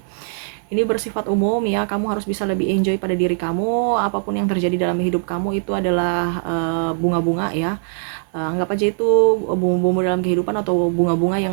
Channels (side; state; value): left; silent; digital silence